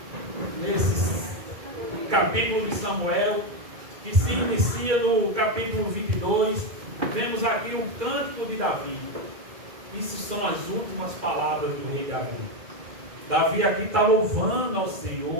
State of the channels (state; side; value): late; left; 2.3 ms